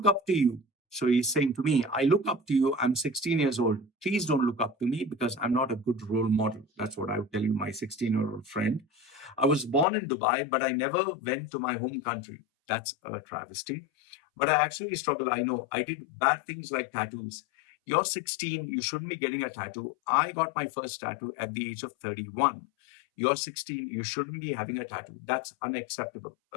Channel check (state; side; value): drops out; right; at 9.9 s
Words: up to you. So he's saying to me, I look up to you. I'm 16 years old. Please don't look up to me because I'm not a good role model. That's what I would tell you, my 16-year-old friend. I was born in Dubai, but I never went to my home country. That's a travesty. But I actually struggle. I know I did bad things like tattoos. You're 16, you shouldn't be getting a tattoo. I got my first tattoo at the age of 31. You're 16, you shouldn't be having a tattoo. That's unacceptable.